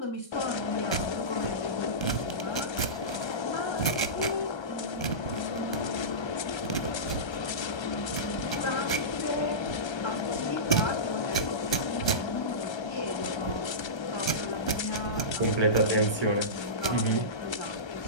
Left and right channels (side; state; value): right; late; 1.3 ms